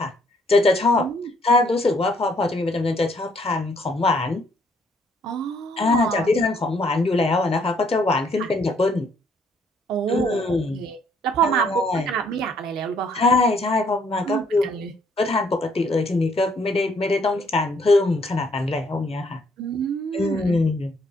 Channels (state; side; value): normal; both; correlation 0.67